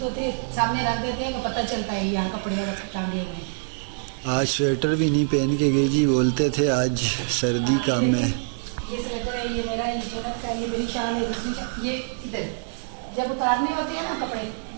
ہوتے سامنے رکھ دیتے ہیں. وہ پتہ چلتا ہے یہاں کپڑے ٹانگے ہوئے ہیں. آج سویٹر بھی نہیں پہن کے گئی جی, بولتے تھے آج سردی کم ہے. یہ سویٹر ہے, یہ میرا جنت کا, یہ میری شال ہے. دوسری یہ ادھر جب اتارنے ہوتے ہیں نا کپڑے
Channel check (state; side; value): silent; left; digital silence